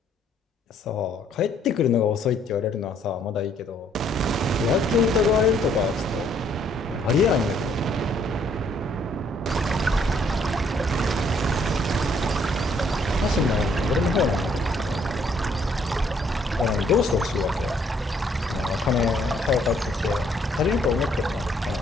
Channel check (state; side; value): normal; both; correlation 0.66